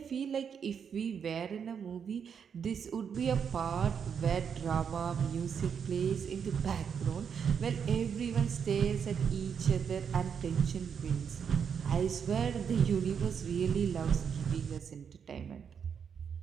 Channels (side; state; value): left; quieter; 7.1 dB